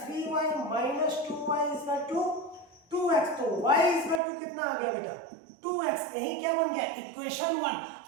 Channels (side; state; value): left; drops out; at 4.2 s